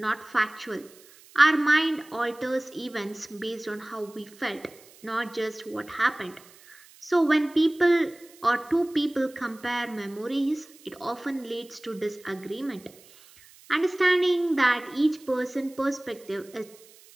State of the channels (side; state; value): right; noise; hiss, 24 dB below the sound